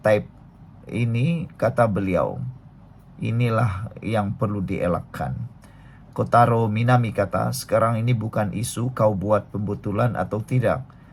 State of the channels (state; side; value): identical; both; correlation 1.00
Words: type ini, kata beliau, inilah yang perlu dielakkan. Kotaro Minami kata sekarang ini bukan isu kau buat pembetulan atau tidak,